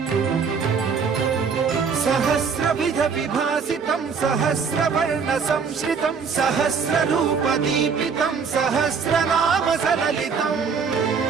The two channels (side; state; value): left; quieter; 5.8 dB